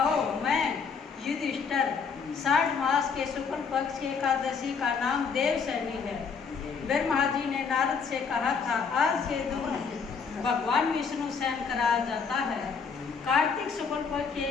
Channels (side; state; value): right; quieter; 5.7 dB